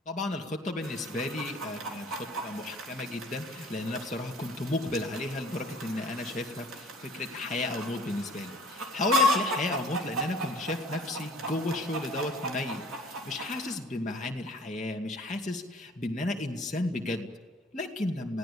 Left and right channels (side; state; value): both; normal; correlation 0.51